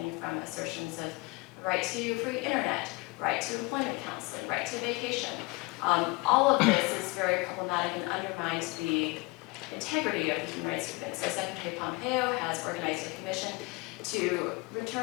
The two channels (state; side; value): quieter; right; 25.7 dB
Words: from assertions of the right to free internet, right to employment counseling, right to vacation. All of this is very problematic and undermines the integrity of the human rights movement. So Secretary Pompeo has organized a commission to